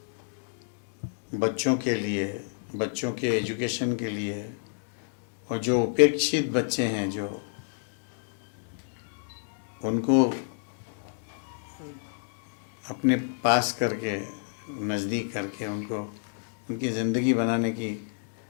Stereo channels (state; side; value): silent; right; digital silence